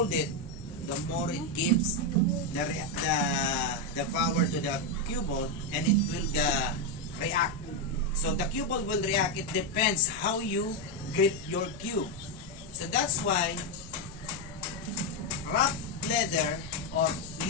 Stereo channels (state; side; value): normal; both; correlation 0.05